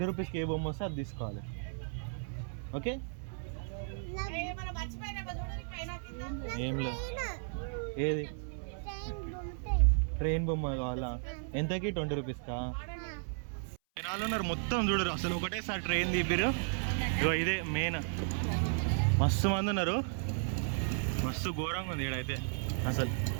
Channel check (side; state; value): left; silent; 55 dB below the other